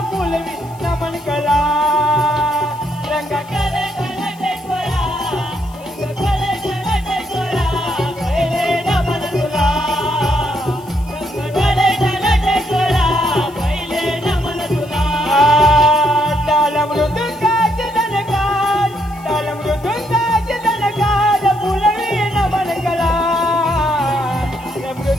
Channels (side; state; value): left; noise; hiss, 25 dB below the sound